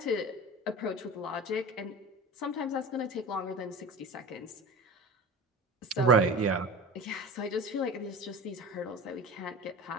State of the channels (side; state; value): both; normal; correlation 0.34